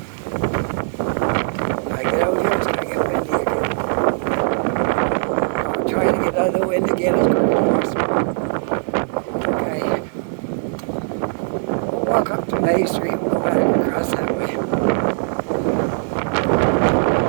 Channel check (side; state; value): left; silent; digital silence